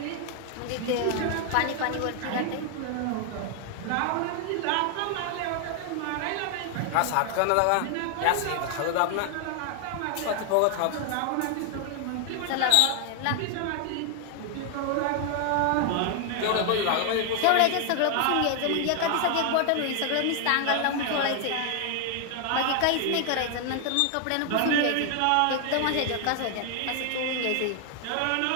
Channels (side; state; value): both; different; correlation 0.00